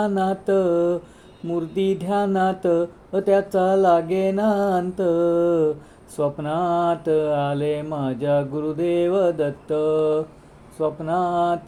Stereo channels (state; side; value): identical; both; correlation 1.00